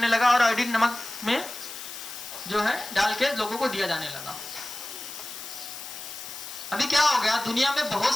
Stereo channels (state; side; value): noise; left; hiss, 11 dB below the sound